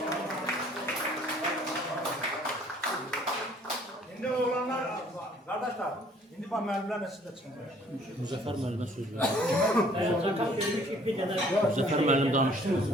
İndi oğlanlar, kardeşler, indi bak müəllimlərlə siz də çıxın. Müzəffər müəllimə söz verir. Müzəffər müəllim danışdı.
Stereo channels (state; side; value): normal; both; correlation 0.58